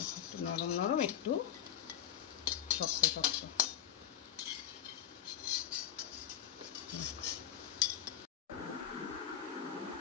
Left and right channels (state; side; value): quieter; right; 10.1 dB